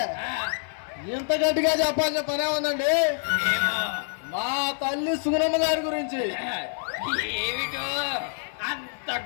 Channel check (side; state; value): right; silent; digital silence